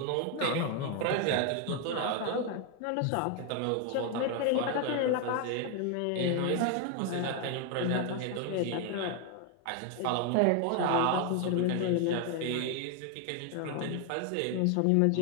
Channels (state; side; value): different; both; correlation 0.01